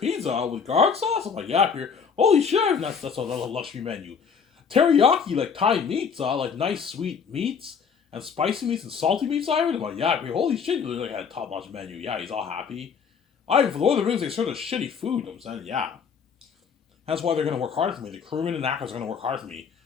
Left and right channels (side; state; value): right; quieter; 6.4 dB